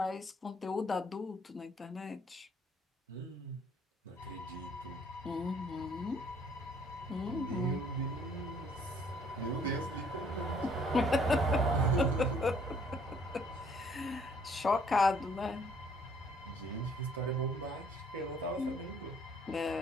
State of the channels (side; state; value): both; normal; correlation 0.61